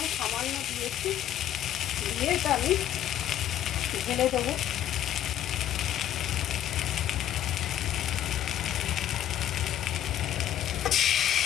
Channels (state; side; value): quieter; right; 11.4 dB